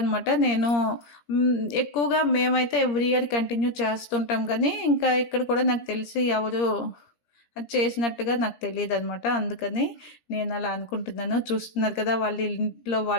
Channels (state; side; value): late; right; 17 ms